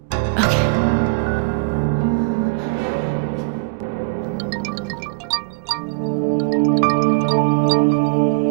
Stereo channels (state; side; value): quieter; left; 31.3 dB